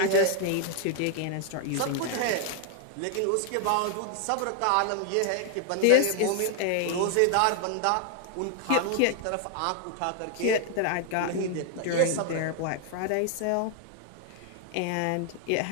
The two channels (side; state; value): both; different; correlation 0.00